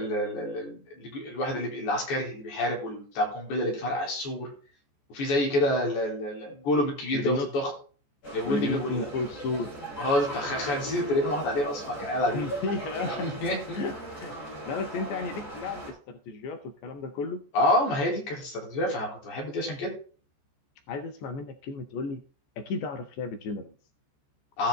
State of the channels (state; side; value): late; right; 14 ms